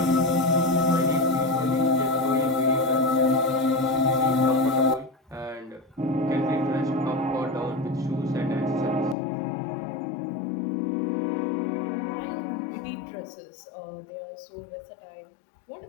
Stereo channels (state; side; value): drops out; right; at 9.2 s